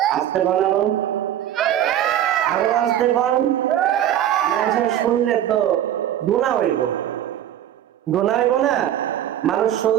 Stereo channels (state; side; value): quieter; left; 11.2 dB